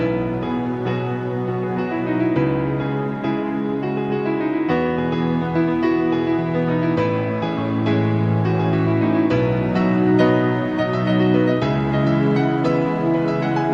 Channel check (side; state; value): both; identical; correlation 1.00